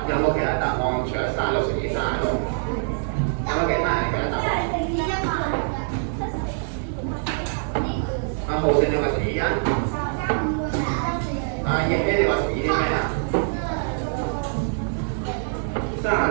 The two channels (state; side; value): silent; left; digital silence